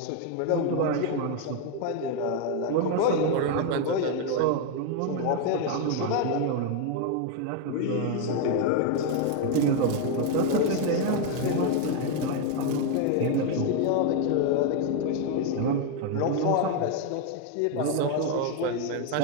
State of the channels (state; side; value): different; both; correlation 0.01